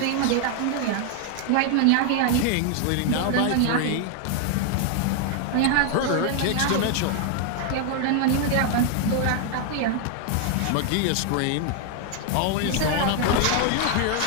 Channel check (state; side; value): different; both; correlation 0.00